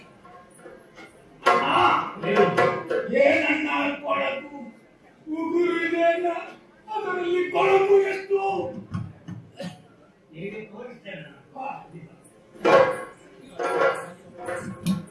ಏನನ್ನ ಕೊಳಕು ಉಗುರು ಇದೆ, ಅದರಲ್ಲಿ ಕೊಳಕು ಎಷ್ಟು ಹೇಗೆ ತೋರಿಸ್ತೇನೆ.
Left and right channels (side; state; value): both; identical; correlation 1.00